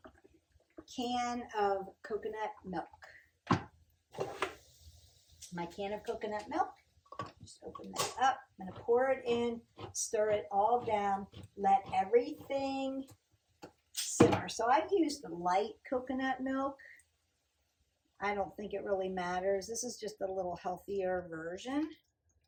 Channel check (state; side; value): identical; both; correlation 1.00